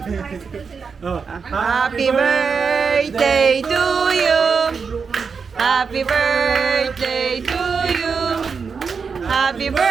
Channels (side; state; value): left; quieter; 5.5 dB